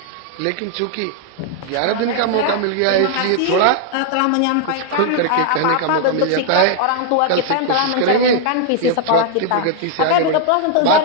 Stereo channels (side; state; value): both; different; correlation 0.00